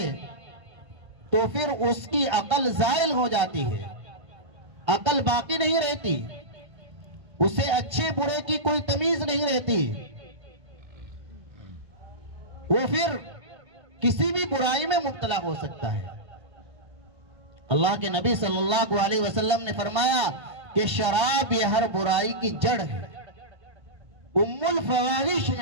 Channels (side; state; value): left; late; 1.3 ms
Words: تو پھر اس کی عقل زائل ہو جاتی ہے، عقل باقی نہیں رہتی، اسے اچھے برے کی کوئی تمیز نہیں رہتی، وہ پھر کسی بھی برائی میں مبتلا ہو سکتا ہے۔ اللہ کے نبی صلی اللہ علیہ وسلم نے فرمایا کہ شراب یہ ہر برائی کی جڑ ہے، ام الفواحش